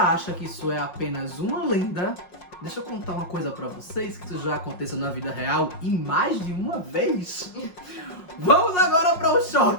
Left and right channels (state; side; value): late; right; 5.6 ms